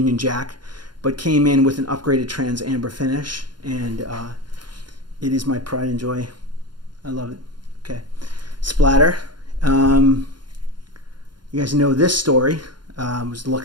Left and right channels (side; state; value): left; late; 0.71 ms